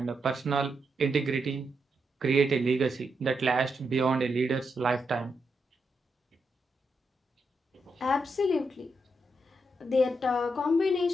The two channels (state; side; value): normal; both; correlation 0.83